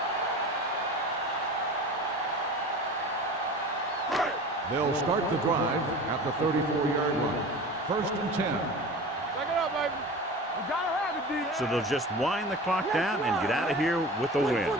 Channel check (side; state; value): both; normal; correlation 0.36